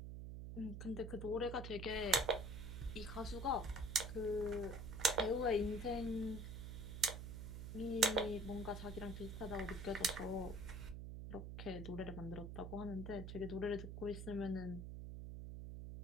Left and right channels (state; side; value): noise; right; hum, 7 dB below the sound